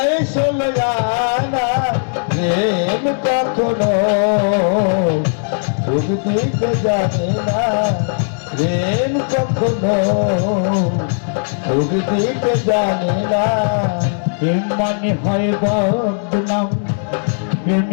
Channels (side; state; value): right; silent; digital silence